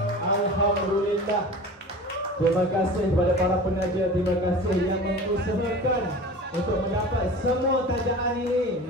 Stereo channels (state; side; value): normal; both; correlation 0.37